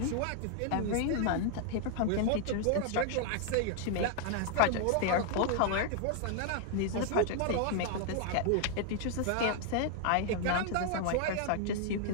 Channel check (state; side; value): different; both; correlation 0.00